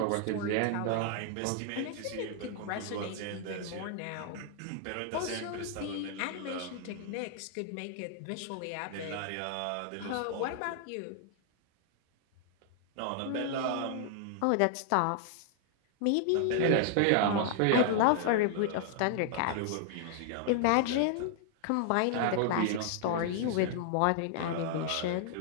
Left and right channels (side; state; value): both; different; correlation 0.00